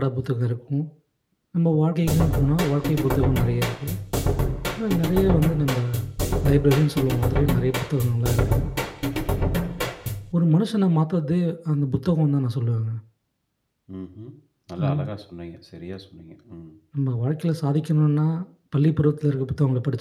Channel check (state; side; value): identical; both; correlation 1.00